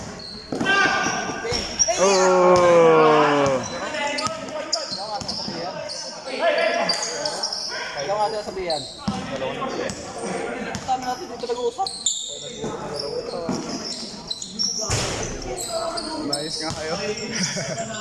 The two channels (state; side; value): identical; both; correlation 1.00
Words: Oh! Ikaw nga sila sabihan. Tama natin dito nag-uusap. Nice nga kayo.